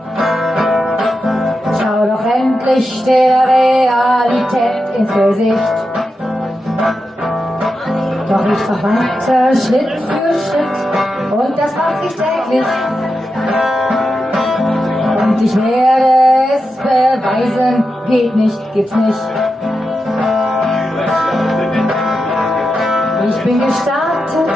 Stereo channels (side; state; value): both; normal; correlation 0.89